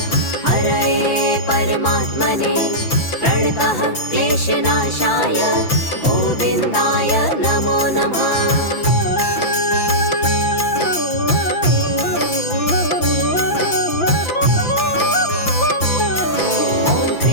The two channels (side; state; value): right; late; 5.9 ms